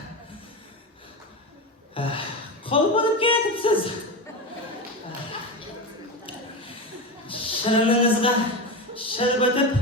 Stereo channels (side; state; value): both; normal; correlation 0.20